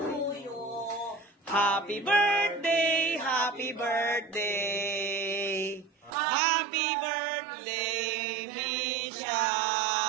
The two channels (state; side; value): drops out; left; at 6.2 s